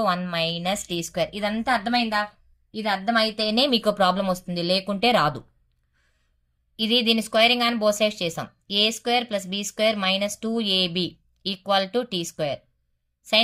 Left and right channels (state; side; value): identical; both; correlation 1.00